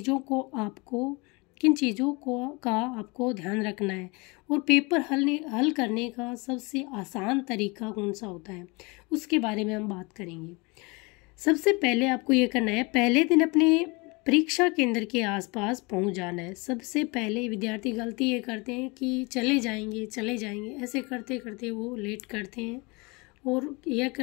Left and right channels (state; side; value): quieter; right; 27.4 dB